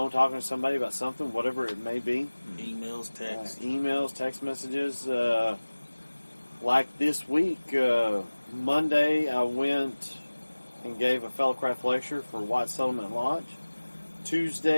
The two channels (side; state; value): both; inverted; correlation -1.00